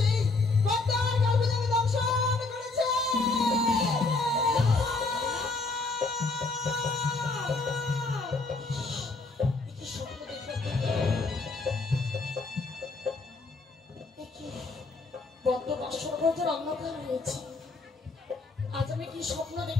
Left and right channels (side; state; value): right; quieter; 3.6 dB